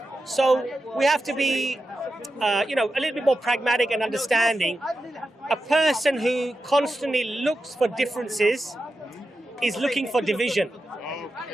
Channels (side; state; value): both; normal; correlation 0.90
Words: So we have to be, a little bit more pragmatic and understanding. A person who constantly looks for differences is looking for division.